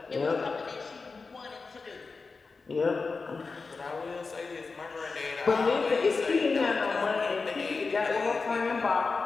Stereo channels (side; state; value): right; quieter; 4.3 dB